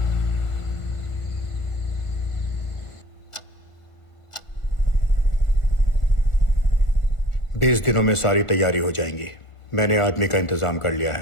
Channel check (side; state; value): right; late; 1.4 ms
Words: बीस दिनों में सारी तैयारी हो जाएंगी। मैंने आदमी का इंतजाम कर लिया